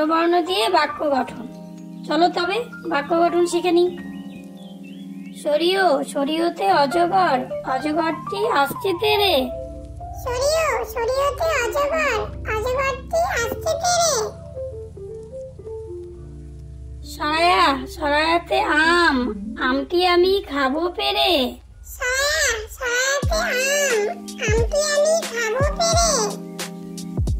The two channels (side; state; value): both; identical; correlation 1.00